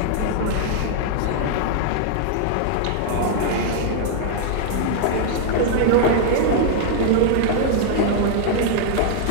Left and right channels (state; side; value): different; both; correlation 0.00